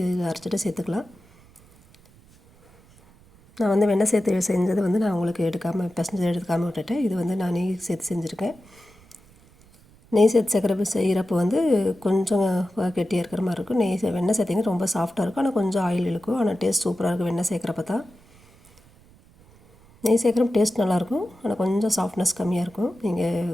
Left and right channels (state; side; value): noise; right; rumble, 27 dB below the sound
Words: அரைச்சிட்டு சேர்த்துக்கலாம். நான் வந்து வெண்ணெய் சேர்த்து செஞ்சது வந்து நான் உங்களுக்கு பிசைஞ்சு எடுக்காமல் விட்டுட்டேன். இது வந்து நான் நெய் சேர்த்து செஞ்சுருக்கேன். நெய் சேர்த்து செய்கிறப்போ வந்து கொஞ்சம் கெட்டியாக இருக்கிற மாதிரி இருக்கும். வெண்ணெய் சேர்த்திங்கன்னா ரொம்ப சாஃப்டாக இருக்கும். ஆனால் கொஞ்சம் ஆயில் இழுக்கும். ஆனால் டேஸ்ட் சூப்பராக இருக்கும் வெண்ணெய் சேர்க்குறப்ப தான். நெய் சேர்க்குறப்ப டேஸ்ட் நல்லாயிருக்கும். ஆனால் கொஞ்சம் சாஃப்ட்னஸ் கம்மியாக இருக்கும். நீங்கள்